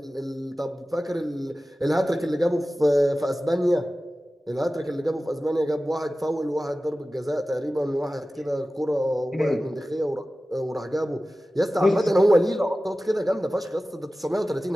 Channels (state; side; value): normal; both; correlation 0.96